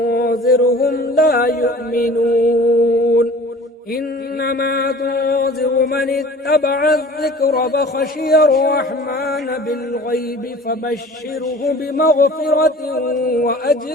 لا يؤمنون إنما تنذر من اتبع الذكر فخشي الرحمن بالغيب فبشره بمغفرة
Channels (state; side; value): normal; both; correlation 0.45